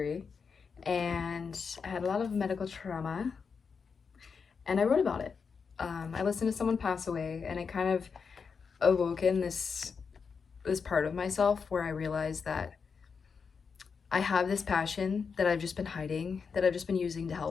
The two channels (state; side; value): quieter; right; 5.7 dB